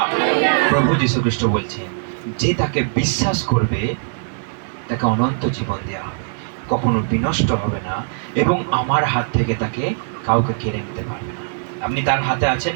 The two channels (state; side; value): silent; left; digital silence